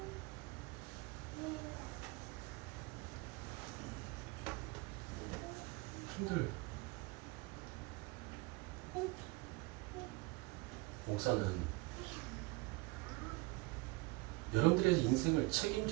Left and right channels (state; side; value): quieter; left; 23.8 dB